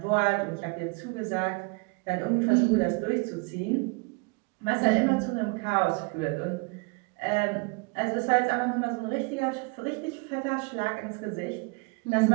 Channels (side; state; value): left; quieter; 31.0 dB